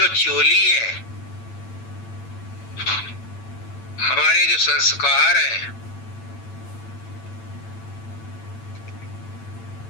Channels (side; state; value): right; late; 8.9 ms